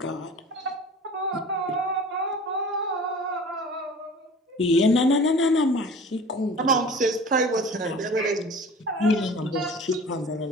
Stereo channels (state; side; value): normal; both; correlation 0.42